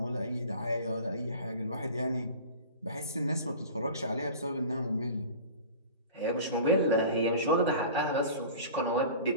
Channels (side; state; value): both; inverted; correlation -0.39